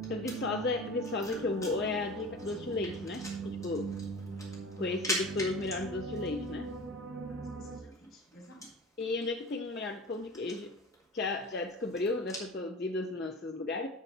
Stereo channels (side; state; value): both; normal; correlation 0.36